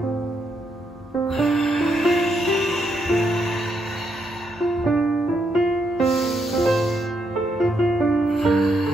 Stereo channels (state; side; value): normal; both; correlation 0.78